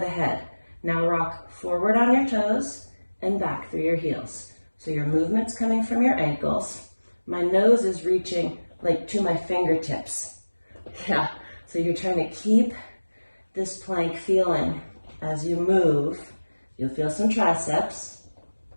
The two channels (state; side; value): inverted; both; correlation -1.00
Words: head. Now rock forward on your toes and back through your heels. So your movement's coming from your ankles. My nose is reaching like to my fingertips. Yeah, so you're trying to keep this plank feeling. As you move, you'll feel some triceps